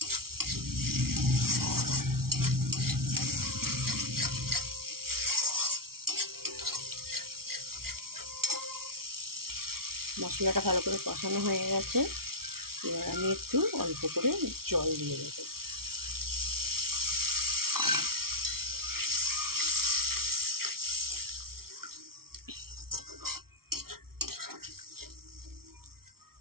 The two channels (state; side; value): late; left; 0.94 ms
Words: মশলাটা ভালো করে কষানো হয়ে গেছে। এবার আমি একটু অল্প করে জল দিয়ে দেবো।